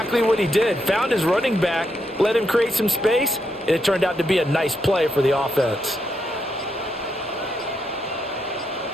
what he did. Found his running back, let him create some space, and it turned out to be a nice play for the offense.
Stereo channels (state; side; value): normal; both; correlation 0.80